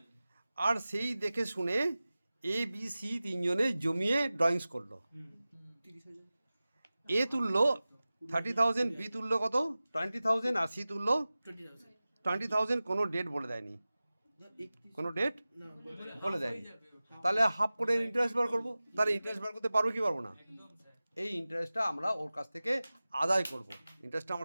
আর সেই দেখে শুনে এ বি সি তিনজনে জমিয়ে ড্রয়িংস করলো। এ তুললো 30,000, বি তুললো কত 20,000, আর সি তুললো 20,000। কোনো ডেট বলে দেয়নি, কোনো ডেট বলে দেয়নি। তাহলে হাফ করে ইন্টারেস্ট বার করবো। তাহলে ইন্টারেস্ট বার করতে পারবো কি পারবো না? এই ইন্টারেস্টটা আমরা ওর কাছ থেকে আদায় করব। ইন্টারেস্টটা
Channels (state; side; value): inverted; both; correlation -0.97